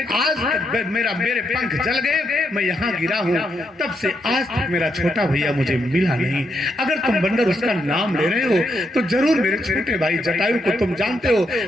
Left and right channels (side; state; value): both; normal; correlation 0.80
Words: आज तक मेरे पंख जल गए, मैं यहाँ गिरा हूँ, तब से आज तक मेरा छोटा भैया मुझे मिला नहीं। अगर तुम बंदर उसका नाम ले रहे हो तो जरूर मेरे छोटे भाई जटायु को तुम जानते हो,